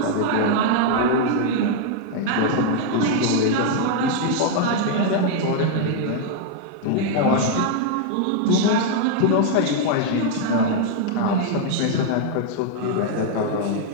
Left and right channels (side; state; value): both; different; correlation 0.00